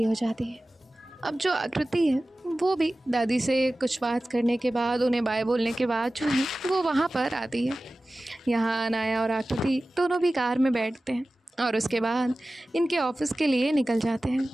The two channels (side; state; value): both; normal; correlation 0.96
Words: हो जाती है। अब जो आकृति है वो भी दादी से कुछ बात करने के बाद, उन्हें बाय बोलने के बाद जो है वो वहाँ पर आती है। यहाँ अनाया और आकृति दोनों भी कार में बैठते हैं और उसके बाद इनके ऑफिस के लिए निकल जाते हैं।